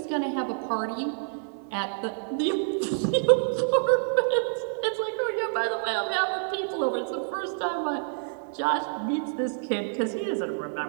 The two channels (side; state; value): left; silent; digital silence